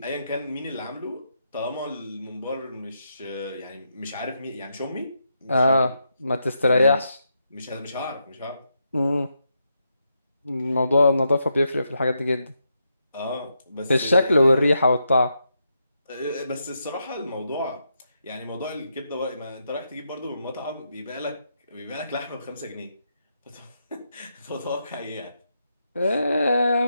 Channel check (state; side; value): inverted; both; correlation -0.82